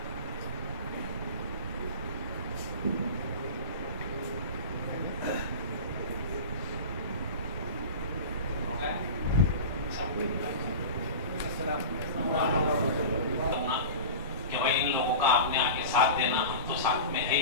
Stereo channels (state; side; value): inverted; both; correlation -0.31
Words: कि भाई इन लोगों का आपने आगे साथ देना, हम तो साथ में है